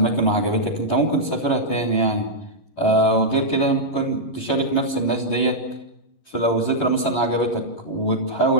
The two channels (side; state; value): right; late; 11 ms